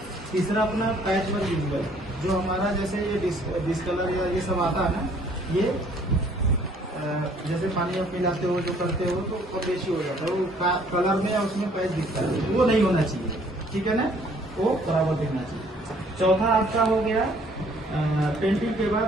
तीसरा, अपना पैच वर्क विजुअल, जो हमारा जैसे ये डिस्कलर या ये सब आता है ना, ये जैसे पानी आप मिलाते हो, जो करते हो, तो कम बेशी हो जाता है, वो कलर में या उसमें पैच दिखता है, वो नहीं होना चाहिए, ठीक है ना, वो बराबर दिखना चाहिए। चौथा आपका हो गया, पेंटिंग के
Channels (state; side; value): normal; both; correlation 0.60